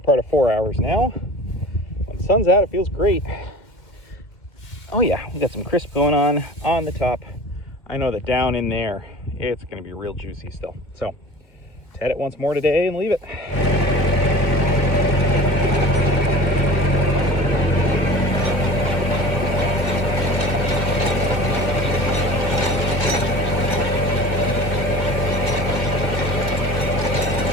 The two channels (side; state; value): right; late; 2.1 ms